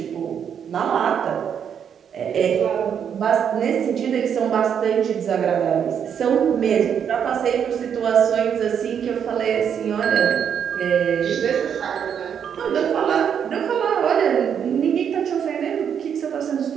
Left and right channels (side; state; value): left; quieter; 8.0 dB